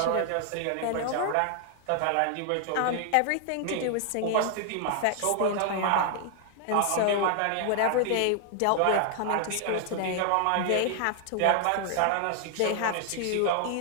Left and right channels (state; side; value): different; both; correlation 0.00